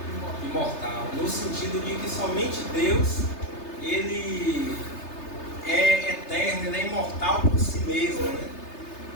imortal, no sentido de que somente Deus ele é eterno, ele é imortal por si mesmo, né?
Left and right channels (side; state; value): right; late; 3.3 ms